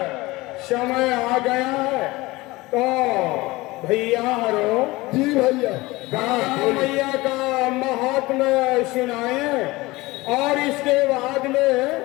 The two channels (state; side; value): quieter; right; 21.0 dB